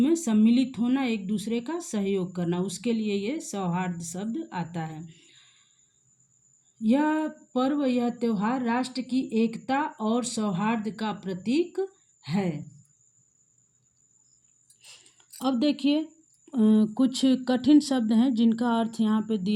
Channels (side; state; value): both; identical; correlation 1.00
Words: सम्मिलित होना, एक दूसरे का सहयोग करना, उसके लिए ये सौहार्द शब्द आता है। यह पर्व, यह त्योहार राष्ट्र की एकता और सौहार्द का प्रतीक है। अब देखिए कुछ कठिन शब्द हैं जिनका अर्थ यहाँ पे